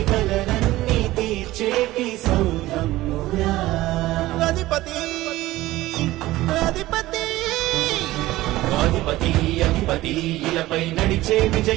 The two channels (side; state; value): left; quieter; 17.1 dB